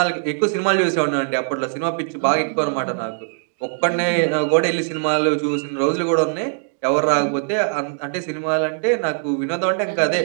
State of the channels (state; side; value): silent; left; digital silence